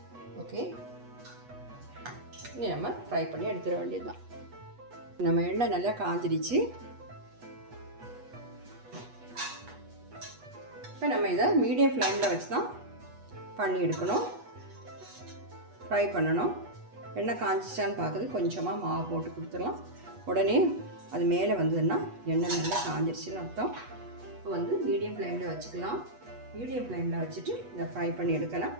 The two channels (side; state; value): left; late; 8.2 ms